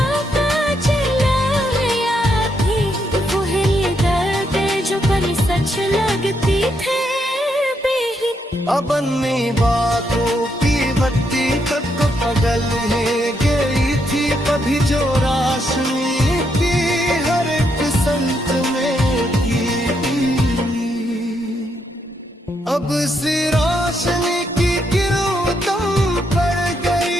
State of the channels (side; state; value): both; normal; correlation 0.78